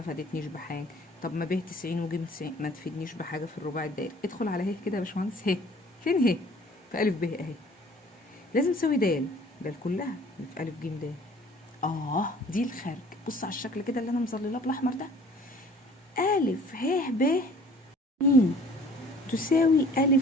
فادتنيش بحاجة. طب ما ب 90 وج 90 ما تفيدنيش بحاجة في الرباعي الدائري. ادخل على ه كده يا باشمهندس. ه فين ه؟ في ألف ب أهي. لازم تساوي د كلها اللي في ألف ج د. دي الخارج. بص على الشكل كده اللي أنا مظللاه بالأحمر ده. ألف ه ب م تساوي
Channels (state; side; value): normal; both; correlation 0.51